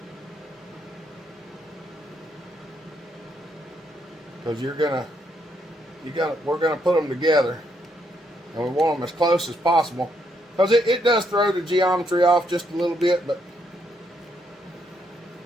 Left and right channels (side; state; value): both; normal; correlation 0.75